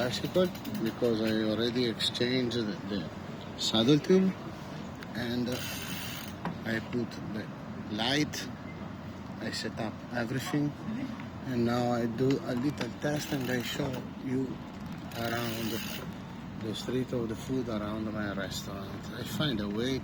because I already exchanged the saddle tube, and I put the light, I set up everything, and now I do a little test and I show you around the street of the food around my restaurant. I find a way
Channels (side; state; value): both; identical; correlation 1.00